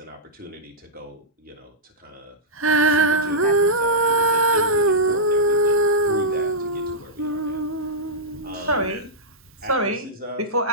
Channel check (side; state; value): both; normal; correlation -0.11